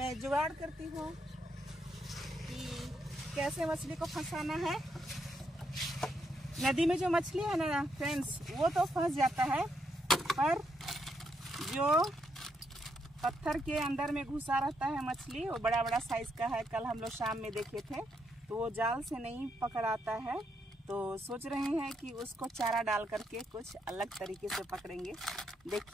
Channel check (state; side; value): normal; both; correlation 0.78